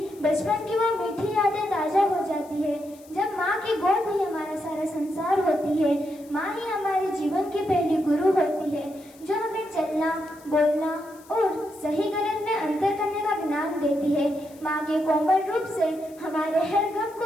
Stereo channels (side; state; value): left; noise; hiss, 25 dB below the sound